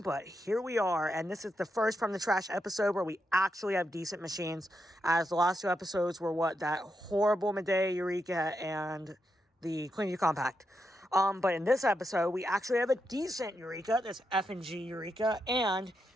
but here we are, and this is the first From the Trash episode where we actually have decent machines, as the last two episodes were that horrible Medea Eureka and the Clean U Compact. But in this episode, we actually have a decent Eureka, this F&G Eureka, and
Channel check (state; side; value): normal; both; correlation 0.84